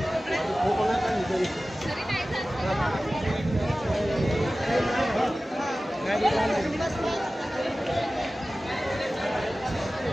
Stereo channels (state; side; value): normal; both; correlation 0.96